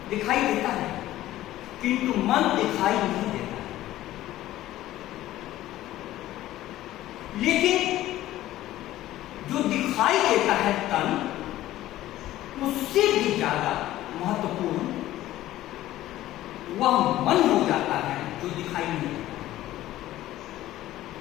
दिखाई देता है किंतु मन दिखाई नहीं देता है। लेकिन जो दिखाई देता है तन, उससे भी ज्यादा महत्वपूर्ण वह मन हो जाता है जो दिखाई नहीं देता।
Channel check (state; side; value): quieter; right; 14.7 dB